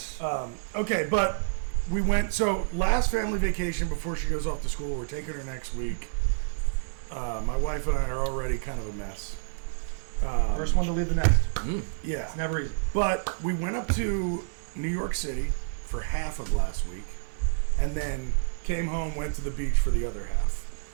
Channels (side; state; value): left; silent; digital silence